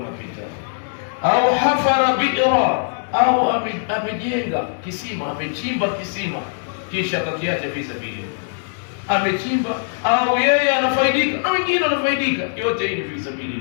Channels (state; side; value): silent; right; digital silence